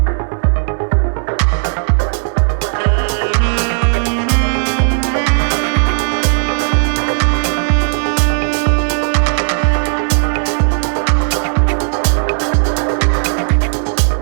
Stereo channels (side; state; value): left; silent; digital silence